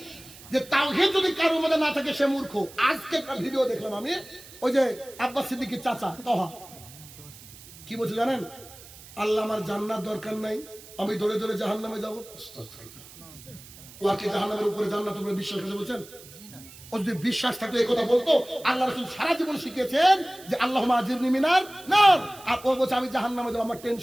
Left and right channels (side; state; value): right; noise; hiss, 19 dB below the sound